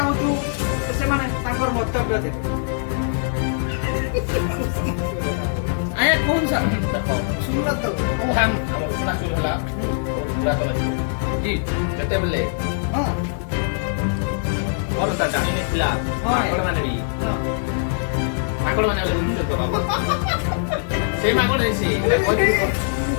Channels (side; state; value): right; silent; 64 dB below the other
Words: से माने ताकर मंतव्य दे आया कौन सा सुनला तो ओ हम उसना चाउल हला पूरा तो जी जते बले हां और ता जानी ने खिला माकड़ माने भी माकड़ माने ले उन तो बाबा से माकड़ है से